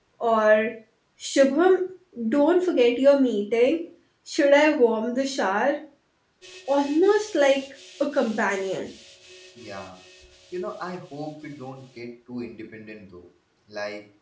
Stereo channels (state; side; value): identical; both; correlation 1.00